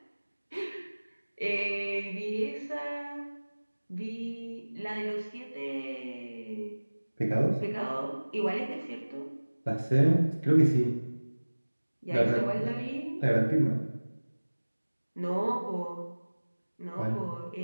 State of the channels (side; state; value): both; inverted; correlation -1.00